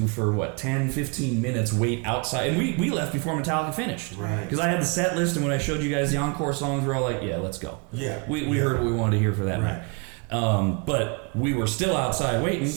for 10, 15 minutes, wait outside. And we left before Metallica finished. Right. Because I had the set list, and when I showed you guys the encore songs, we're all like, yeah, let's go. Yeah. We heard what we wanted to hear for that right. night. But we were still outside waiting.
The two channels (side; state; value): left; quieter; 32.2 dB